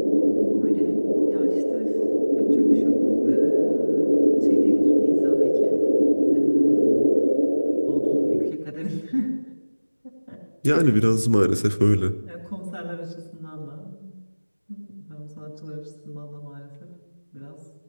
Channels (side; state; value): both; inverted; correlation -1.00